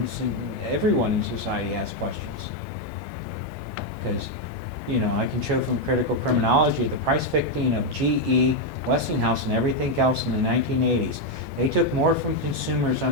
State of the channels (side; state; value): right; late; 9.8 ms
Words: and everyone in society has questions. Because, you know, I can show from critical criminology the price fixing of GE, Westinghouse, and everything else in the 1980s. They took more from consumers